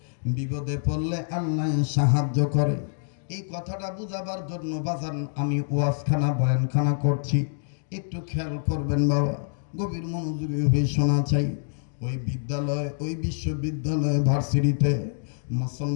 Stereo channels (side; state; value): right; silent; digital silence